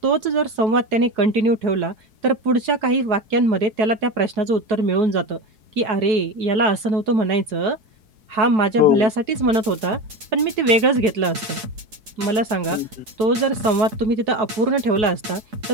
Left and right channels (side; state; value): left; late; 4.7 ms